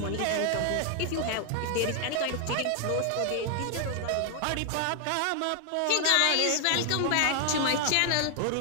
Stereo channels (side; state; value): both; different; correlation 0.00